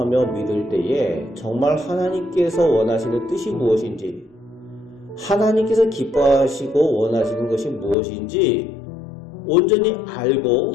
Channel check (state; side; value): drops out; right; at 8.0 s